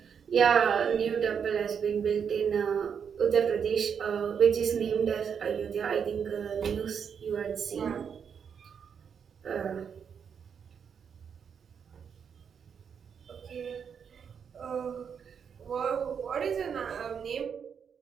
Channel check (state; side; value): quieter; left; 7.1 dB